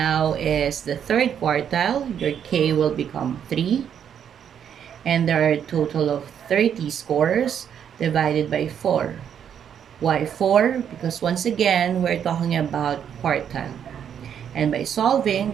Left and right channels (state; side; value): quieter; left; 8.6 dB